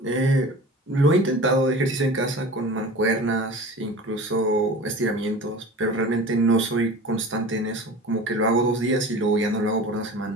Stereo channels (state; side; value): normal; both; correlation 0.37